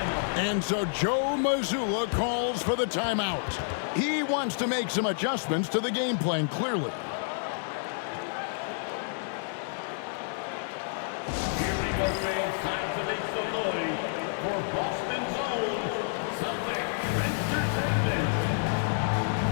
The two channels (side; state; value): right; silent; digital silence